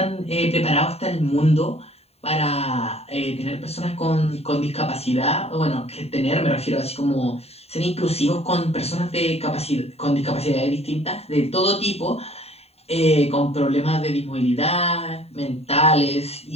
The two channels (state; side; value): late; right; 0.30 ms